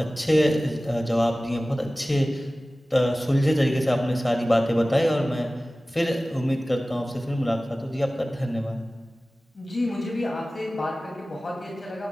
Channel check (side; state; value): both; normal; correlation 0.97